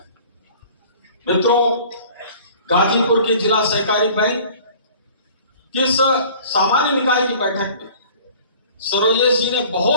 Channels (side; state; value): both; inverted; correlation -0.48